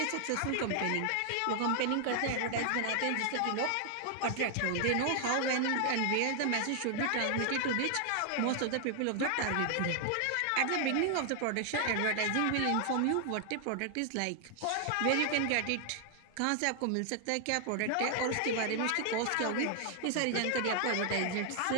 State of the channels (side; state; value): both; different; correlation 0.00